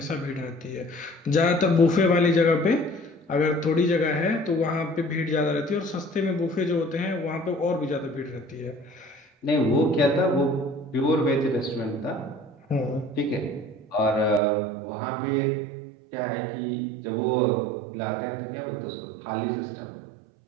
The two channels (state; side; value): drops out; left; at 14.4 s